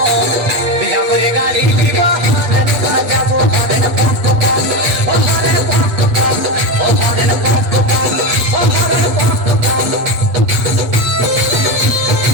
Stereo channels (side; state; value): left; late; 8.1 ms